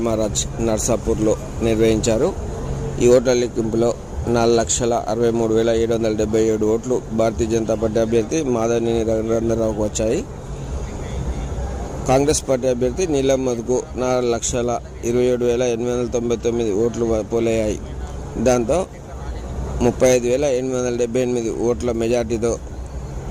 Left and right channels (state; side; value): identical; both; correlation 1.00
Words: నర్సాపూర్లో నిర్వహించారు. ఈ ఓట్ల లెక్కింపులో 4,63,777 ఓట్లు భారతీయ జనతా పార్టీ అభ్యర్థి మాధవనేని రఘునందనరావుకు వచ్చాయి. కాంగ్రెస్ పార్టీ అభ్యర్థి నీలం మధుకు 4,27,899 ఓట్లు పోలయ్యాయి. దాంతో 35,878 ఓట్ల మెజార్టీతో